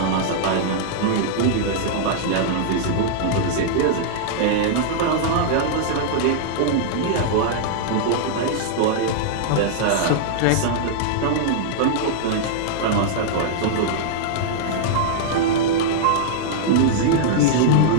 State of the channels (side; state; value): both; different; correlation -0.02